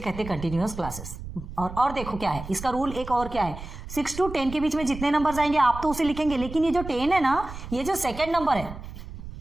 हैं कंटिन्यूअस क्लासेस। और देखो क्या है इसका रूल, एक और क्या है, 6 to 10 के बीच में जितने नंबर्स आएंगे आप तो उसे लिखेंगे, लेकिन ये जो 10 है ना, ये जो सेकेंड नंबर है,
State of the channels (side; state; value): right; noise; rumble, 11 dB below the sound